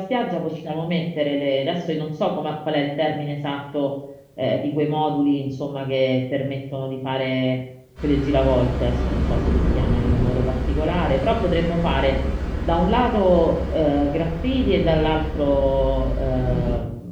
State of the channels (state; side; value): identical; both; correlation 1.00